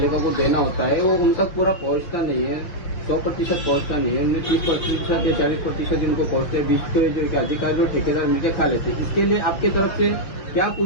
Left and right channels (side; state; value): right; late; 6.1 ms